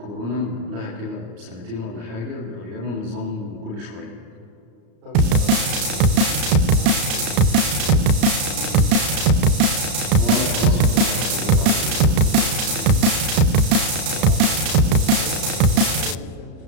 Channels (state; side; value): late; left; 34 ms